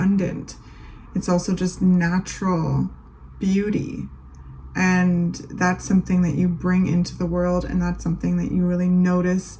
It's also just natural beauty, and that's something that you bring into the world, and that's something that you really notice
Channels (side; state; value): both; identical; correlation 1.00